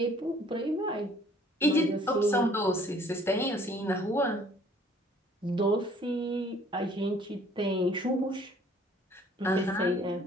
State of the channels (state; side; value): normal; both; correlation 0.57